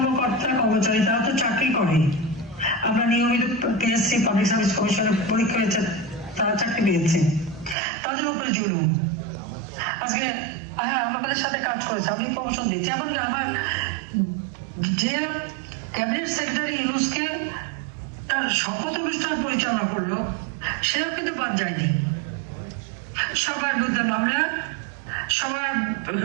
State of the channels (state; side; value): drops out; left; at 7.8 s